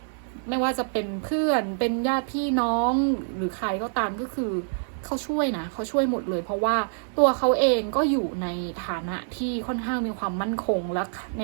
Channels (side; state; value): left; silent; digital silence